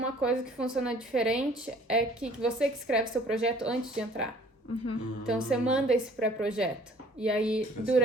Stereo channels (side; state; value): both; normal; correlation 0.54